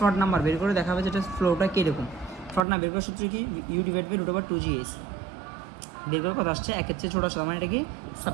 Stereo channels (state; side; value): drops out; left; at 2.7 s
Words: নাম্বার বের করে দেখাবে যেটা ফ্লোটা কীরকম। ফ্রড না বের করার সূত্র কি U ডিভাইড বাই √2gh, বের করার কথা আসছে একের চেয়ে ছোটো আসছে, মানে এটা কি